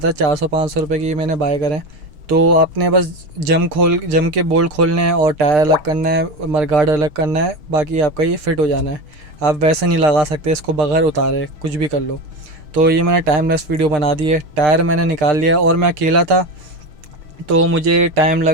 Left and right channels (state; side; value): late; left; 6.6 ms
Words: है। 400-500 रुपये की मैंने बाय करें। तो आपने बस जम के बोल्ट खोलने हैं और टायर अलग करना है, मडगार्ड अलग करना है, बाकी आपका ये फ़िट हो जाना है। आप वैसे नहीं लगा सकते इसको बगैर उतारे, कुछ भी कर लो। तो ये मैंने टाइमलेस वीडियो बना दी है। टायर मैंने निकाल लिया, और मैं अकेला था तो मुझे टाइम